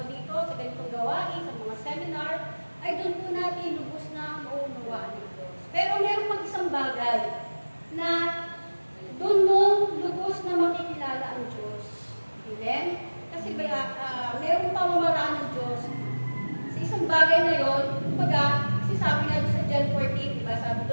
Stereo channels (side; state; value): both; inverted; correlation -1.00